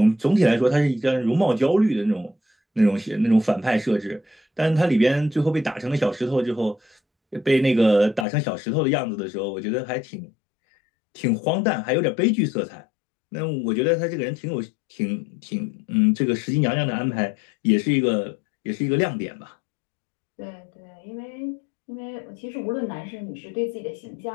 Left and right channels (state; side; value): drops out; right; at 8.2 s